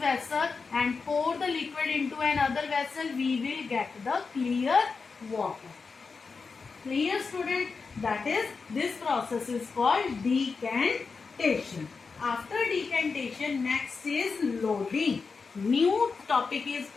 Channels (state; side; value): quieter; right; 4.8 dB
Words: and pour the liquid into another vessel. We will get the clear water. Clear, student? That is, this process is called decantation. After decantation, next is loading. new topic is